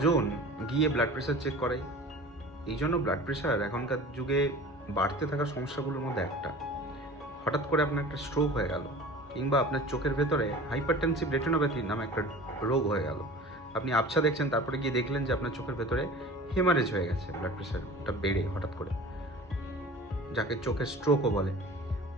গিয়ে ব্লাড প্রেশার চেক করাই? এই জন্য ব্লাড প্রেশার এখনকার যুগে বাড়তে থাকা সমস্যাগুলোর মধ্যে একটা। হঠাৎ করে আপনার একটা স্ট্রোক হয়ে গেল, কিংবা আপনার চোখের ভেতরে হাইপারটেনসিভ রেটিনোপ্যাথি নামে একটা রোগ হয়ে গেল। আপনি আবছা দেখছেন, তারপরে গিয়ে দেখলেন যে আপনার চোখের ভেতরে হেমারেজ হয়ে গেছে, ব্লাড প্রেশারটা বেড়ে হঠাৎ করে, যাকে চোখের স্ট্রোকও বলে।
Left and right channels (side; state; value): both; normal; correlation 0.40